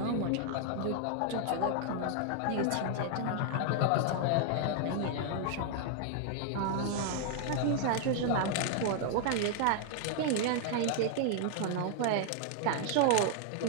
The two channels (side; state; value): both; different; correlation 0.00